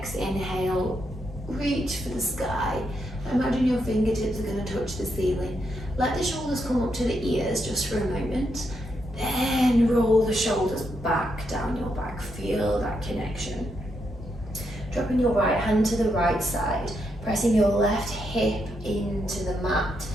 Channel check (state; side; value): normal; both; correlation 0.81